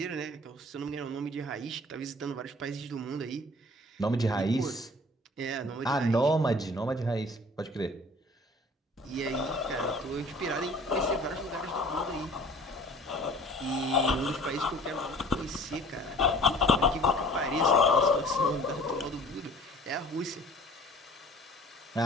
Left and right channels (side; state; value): both; normal; correlation 0.49